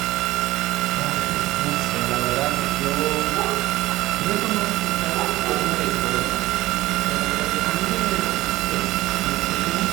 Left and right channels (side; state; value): left; quieter; 17.5 dB